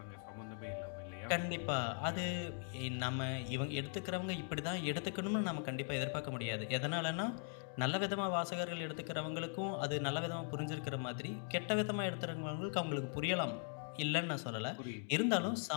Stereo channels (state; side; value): silent; right; 51 dB below the other